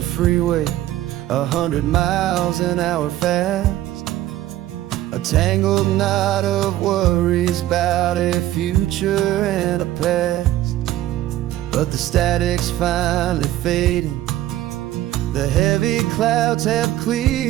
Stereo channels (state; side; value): quieter; left; 14.2 dB